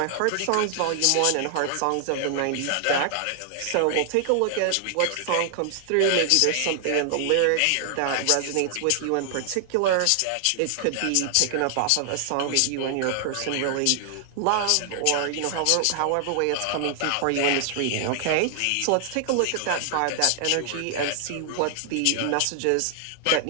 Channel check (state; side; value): different; both; correlation 0.00